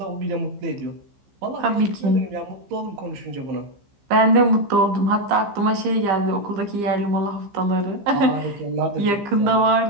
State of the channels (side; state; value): left; late; 15 ms